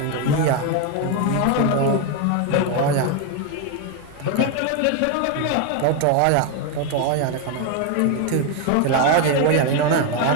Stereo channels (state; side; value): different; both; correlation 0.02